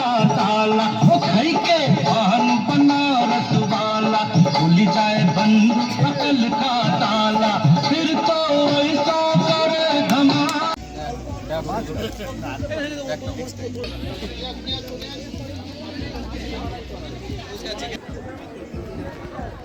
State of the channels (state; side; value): identical; both; correlation 1.00